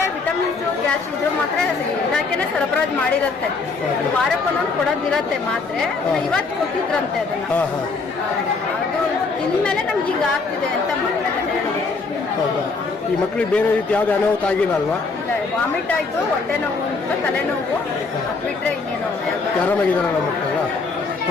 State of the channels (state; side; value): quieter; right; 4.2 dB